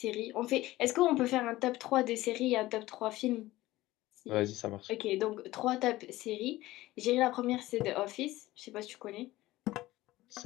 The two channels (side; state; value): right; quieter; 17.3 dB